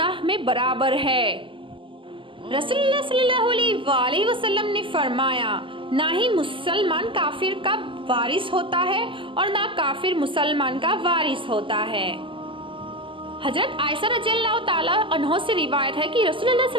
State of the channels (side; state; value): left; late; 0.25 ms